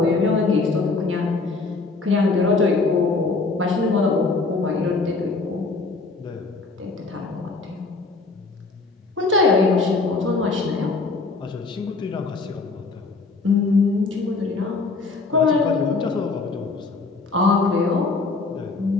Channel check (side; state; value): right; quieter; 3.9 dB